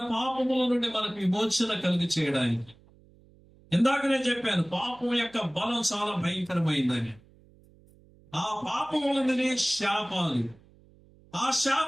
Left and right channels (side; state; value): right; noise; hum, 28 dB below the sound